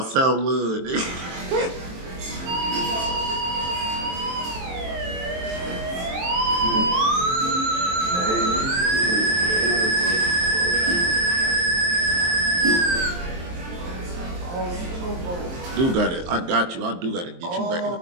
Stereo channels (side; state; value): left; late; 23 ms